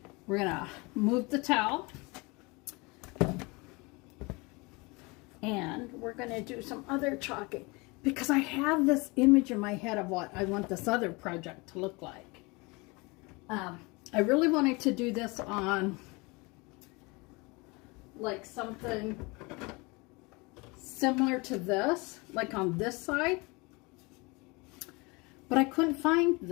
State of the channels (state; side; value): quieter; right; 26.5 dB